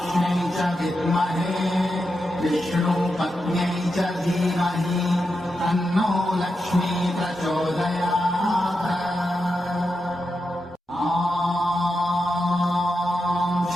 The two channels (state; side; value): normal; both; correlation 0.87